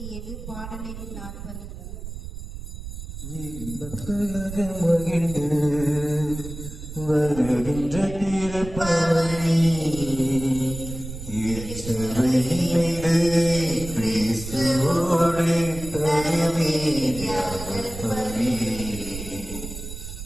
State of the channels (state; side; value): noise; right; rumble, 10 dB below the sound